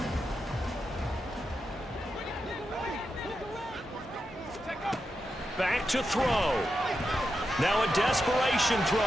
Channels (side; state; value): both; normal; correlation 0.87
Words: Back to throw. Now a desperation